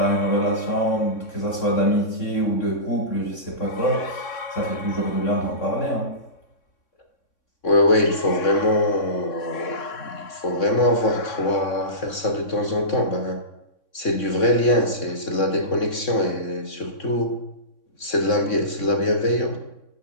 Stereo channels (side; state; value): right; late; 3.6 ms